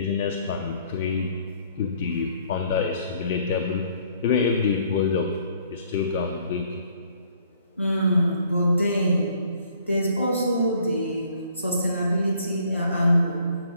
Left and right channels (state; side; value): inverted; both; correlation -0.62